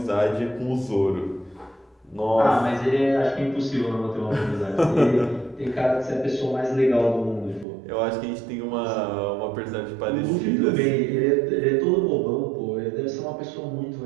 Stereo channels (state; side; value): drops out; left; at 7.7 s